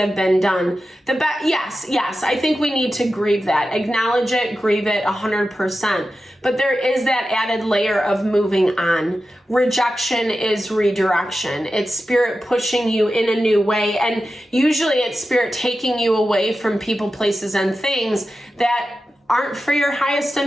been done. Yes, I think we need to grieve that. Acknowledge it, grieve it 100%. But there is that added layer of moving on. Rejection is redirection. It's Spirit pushing you in a new way. And usually it's Spirit taking you away from people, places, and things that aren't for your highest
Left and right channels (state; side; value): normal; both; correlation 0.92